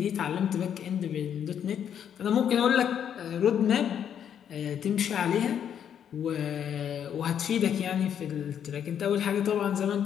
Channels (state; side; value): quieter; right; 8.9 dB